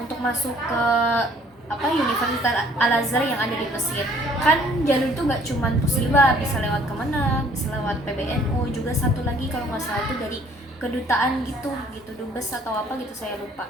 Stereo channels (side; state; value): both; normal; correlation 0.59